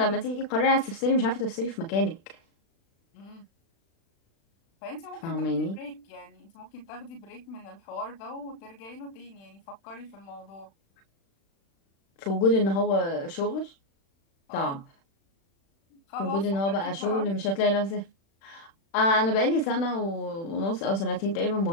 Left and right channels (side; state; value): right; late; 36 ms